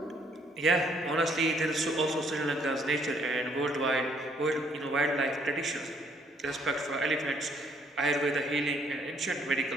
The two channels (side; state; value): both; normal; correlation 0.67